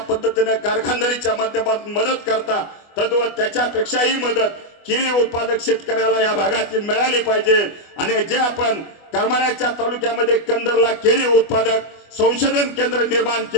कारखानदारीच्या माध्यमातून मदत करता तद्वत त्याच्यापेक्षाही मदत केळी उत्पादक शेतकऱ्याला या भागातील मिळाली पाहिजे। आणि जे आपण करमाळ्याच्या तालुक्यामध्ये कंदरला केळी उत्पादक संशोधन केंद्र निर्माण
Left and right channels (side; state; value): right; late; 24 ms